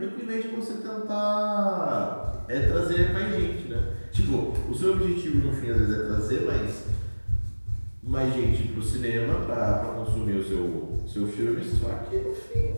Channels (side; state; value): both; inverted; correlation -1.00